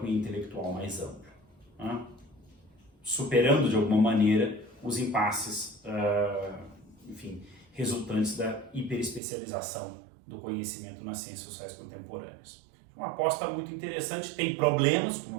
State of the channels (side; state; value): left; drops out; at 9.2 s